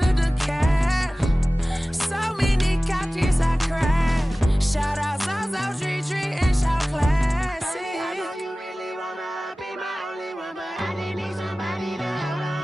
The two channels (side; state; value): both; normal; correlation 0.97